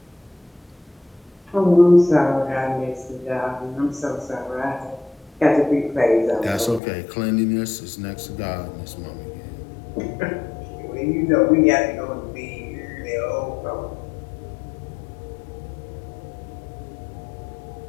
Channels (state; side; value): drops out; right; at 6.8 s